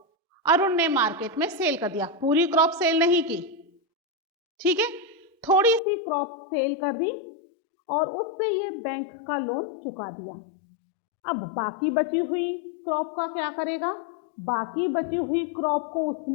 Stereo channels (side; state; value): right; drops out; at 5.8 s